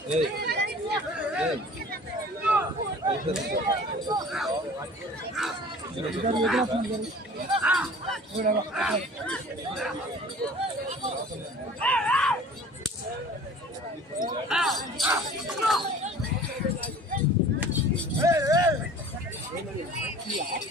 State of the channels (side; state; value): both; normal; correlation 0.45